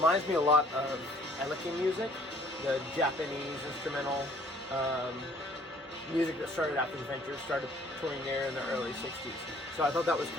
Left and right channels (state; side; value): normal; both; correlation 0.57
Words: me a lot of Eleki music, the Japanese instrumental music that started after the Ventures, started touring there in the early '60s. So I thought that was